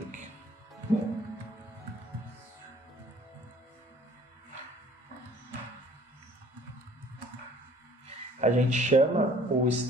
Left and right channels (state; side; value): normal; both; correlation 0.55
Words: A gente chama o